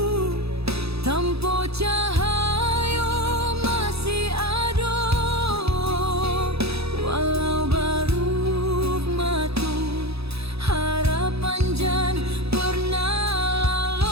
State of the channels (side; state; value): left; late; 0.78 ms